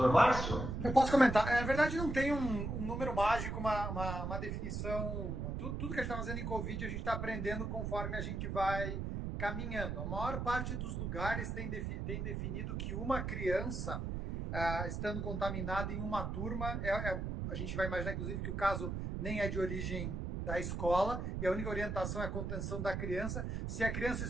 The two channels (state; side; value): noise; right; rumble, 3 dB below the sound